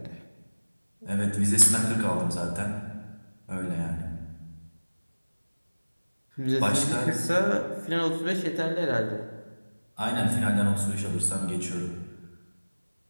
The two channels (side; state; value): both; inverted; correlation -1.00